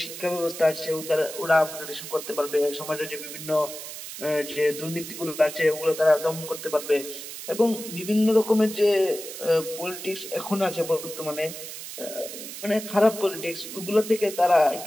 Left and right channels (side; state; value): right; noise; hiss, 10 dB below the sound